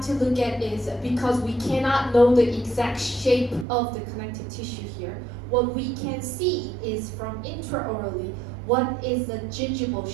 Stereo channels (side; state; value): left; drops out; at 3.7 s